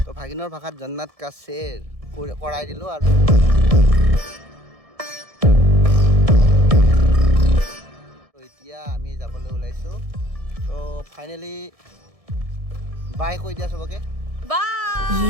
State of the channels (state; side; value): late; left; 1.6 ms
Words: তো ভাগিনৰ ভাষাত জন্নাত কা শ্বেৰ কৰাই দিলোঁ আৰু এতিয়া আমি যাবলৈ ওলাইছোঁ। তো ফাইনেলি বাই কৈ দিয়া চবকে। Bye.